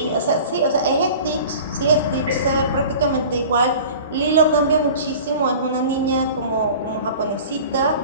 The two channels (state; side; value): inverted; both; correlation -0.41